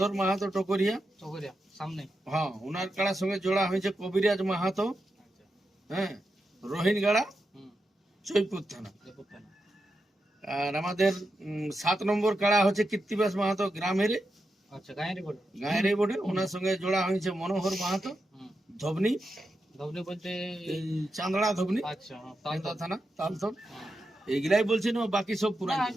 মাহাতো টকরিয়া, চকরিয়া সামনে। হ্যাঁ ওনার কাড়ার সঙ্গে জোড়া হয়েছে কবিরাজ মাহাতো, আচ্ছা, হ্যাঁ রোহিনগাড়া, হুম, জয়পুর থানা। দেখো কেন। আর আমাদের 7 নম্বর কাড়া হচ্ছে কীর্তিবাস মাহাতো গ্রামের, আচ্ছা, গায়ের রিপোর্ট। গায়ের এই বোর্ডে, ওনার সঙ্গে জোড়া হয়েছে মনোহর মাহাতো, হুম, ধবনি, ধবনি বলতে। এই চান্দড়া ধবনি, আচ্ছা, হ্যাঁ, তাও তো। কেন্দা থানা, তালতর। হ্যাঁ। এইগুলাই বলছি না, বাকি সব পুরাই না,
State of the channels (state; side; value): normal; both; correlation 0.87